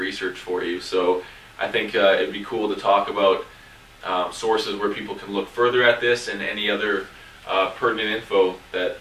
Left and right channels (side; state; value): both; identical; correlation 1.00